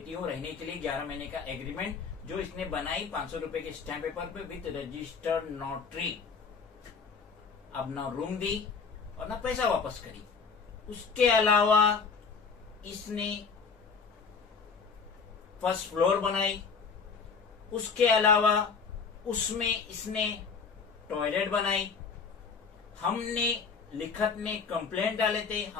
हूँ रहने के लिए, 11 महीने का एग्रीमेंट जो इसने बनाई 500 रुपए के स्टैम्प पेपर पे विद रजिस्टर्ड नोटरी। अब ना रूम दी और ना पैसा वापस करी। उसके अलावा इसने फर्स्ट फ्लोर बनाई, उसके अलावा उसमें इसने टॉयलेट बनाई। हमने लिखत में कंप्लेंट डाले थे,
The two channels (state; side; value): quieter; right; 5.4 dB